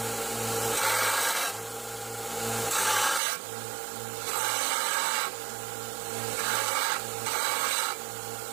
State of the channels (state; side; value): drops out; left; at 3.2 s